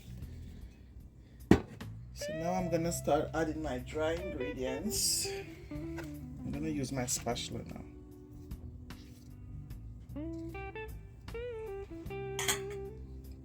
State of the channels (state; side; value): identical; both; correlation 1.00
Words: So now I'm gonna start adding my dry ingredients. I'm gonna use my spatula now.